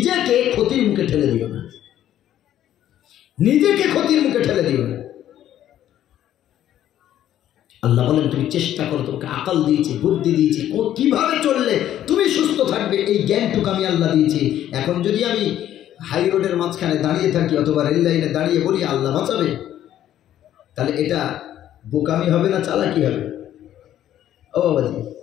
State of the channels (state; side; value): quieter; right; 11.8 dB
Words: ক্ষতির মুখে ঠেলে দিও না, নিজেকে ক্ষতির মুখে ঠেলে দিও না। আল্লাহ বলেন, তুমি চেষ্টা করো, তোমাকে আকল দিয়েছি, বুদ্ধি দিয়েছি, কিভাবে চললে তুমি সুস্থ থাকবে, এই জ্ঞানটুকু আমি আল্লাহ দিয়েছি। এখন যদি আমি হাই রোডের মাঝখানে দাঁড়িয়ে থাকি অথবা রেল লাইনে দাঁড়িয়ে বলি আল্লাহ বাঁচাবে, তাহলে এটা বোকামি হবে না চালাকি হবে? ও বাবাজি,